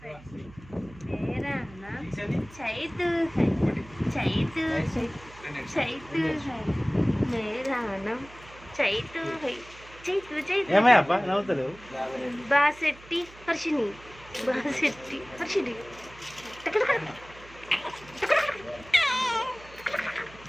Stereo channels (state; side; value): noise; right; hum, 21 dB below the sound